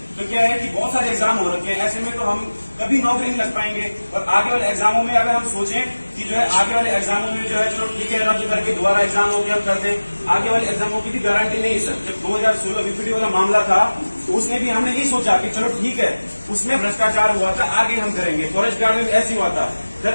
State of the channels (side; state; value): both; inverted; correlation -1.00